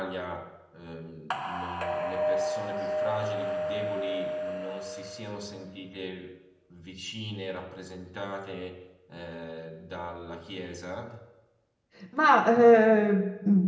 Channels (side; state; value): both; identical; correlation 1.00